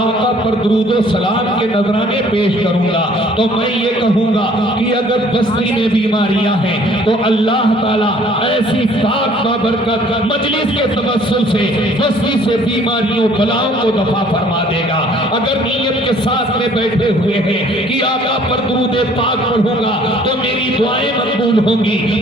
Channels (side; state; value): both; normal; correlation 0.56